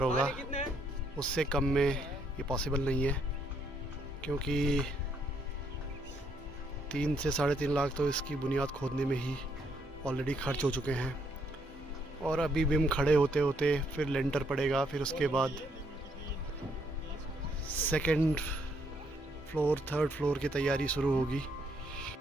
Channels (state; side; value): normal; both; correlation 0.72